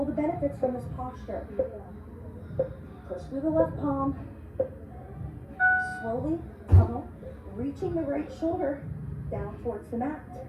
the benefits from this posture. Push through the left palm. Slowly tunnel, reaching the right shoulder down towards the mat.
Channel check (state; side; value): identical; both; correlation 1.00